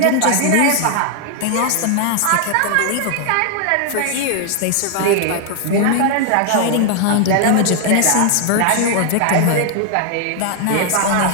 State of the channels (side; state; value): both; different; correlation 0.00